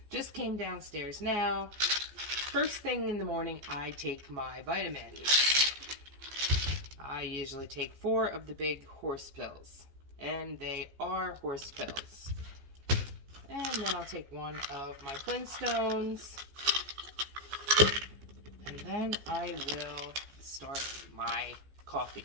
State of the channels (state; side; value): late; left; 14 ms